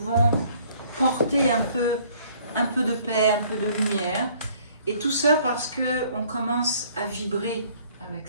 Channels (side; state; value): both; inverted; correlation -0.59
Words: porter un peu de paix, un peu de lumière. Et tout ça parce qu'on commence à vibrer avec